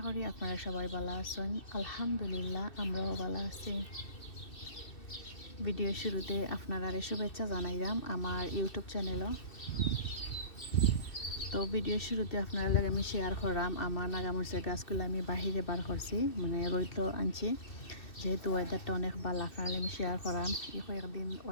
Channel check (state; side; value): late; right; 2.6 ms